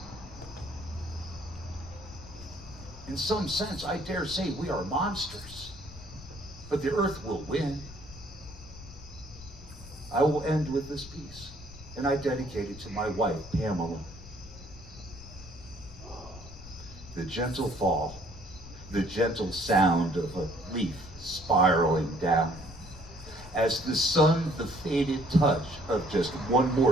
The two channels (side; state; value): left; noise; rumble, 16 dB below the sound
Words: In some sense, I dare say we are monsters, but the earth will win. I will end with this piece, and I dedicate it to my wife, Pamela. The gentle fall, the gentle sound of a leaf spiraling down. As the sun, the faded touch of just one